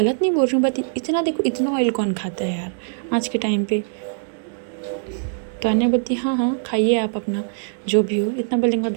नहीं बोल रही हूँ, बात इतना देखो, इतना ऑयल कौन खाता है यार आज के टाइम पे? तो अन्य बोलती हाँ हाँ खाइए आप अपना जो भी हो। इतना बोलने के बाद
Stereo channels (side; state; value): left; silent; digital silence